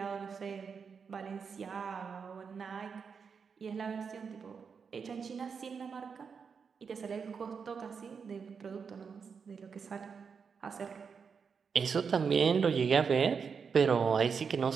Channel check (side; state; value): left; quieter; 6.0 dB